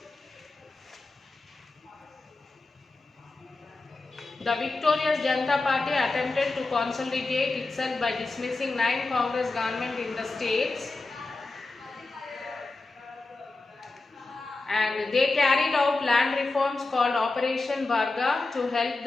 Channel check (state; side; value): quieter; right; 3.4 dB